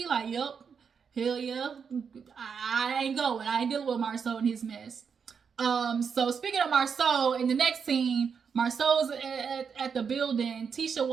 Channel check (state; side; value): quieter; left; 6.4 dB